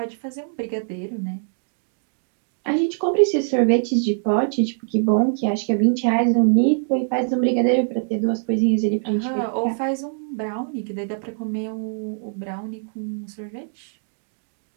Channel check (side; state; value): left; silent; digital silence